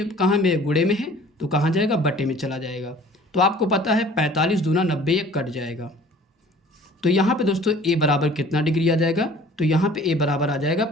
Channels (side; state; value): both; normal; correlation 0.50